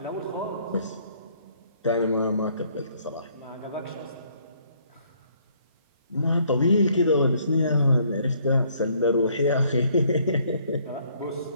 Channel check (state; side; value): inverted; both; correlation -0.65